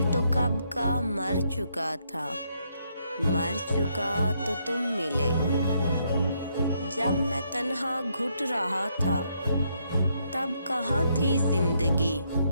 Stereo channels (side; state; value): both; inverted; correlation -0.75